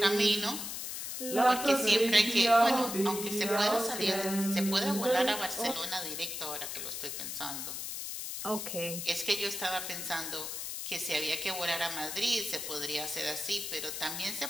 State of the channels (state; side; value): noise; left; hiss, 5 dB below the sound